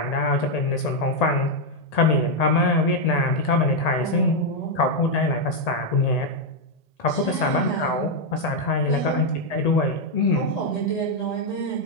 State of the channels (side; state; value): right; late; 1.8 ms